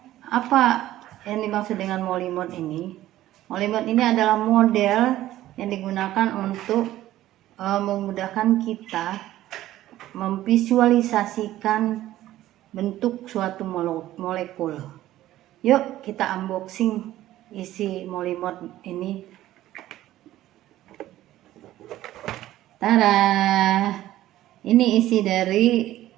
apa yang dimaksud dengan molimot ini? Molimot ini adalah model yang digunakan untuk memudahkan kita memvisualisasikan bentuk suatu molekul. Yuk kita unboxing isi molimot ini. Tara, ini isi dari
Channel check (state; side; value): quieter; left; 14.4 dB